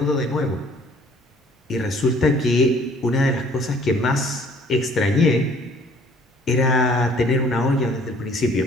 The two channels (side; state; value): both; normal; correlation 0.56